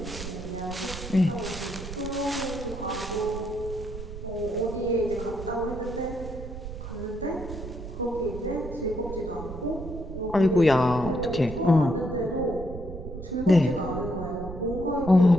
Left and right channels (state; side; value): noise; right; rumble, 10 dB below the sound